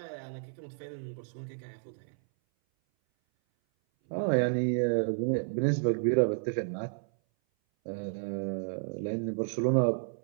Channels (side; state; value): left; silent; 57 dB below the other